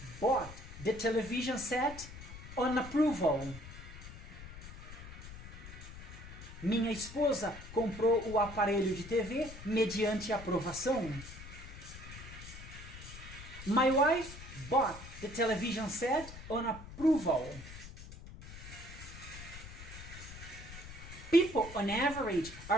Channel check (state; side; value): noise; left; rumble, 13 dB below the sound